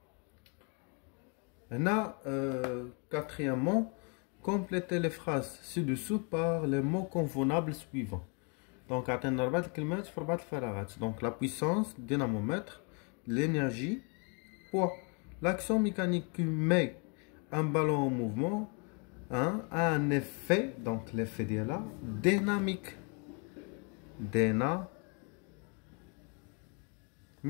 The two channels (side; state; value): right; quieter; 36.0 dB